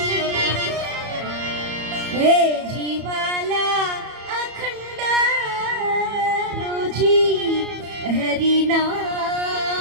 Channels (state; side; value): late; left; 34 ms